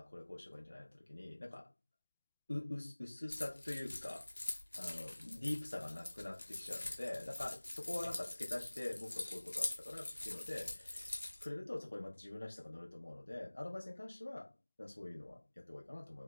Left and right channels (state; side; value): inverted; both; correlation -1.00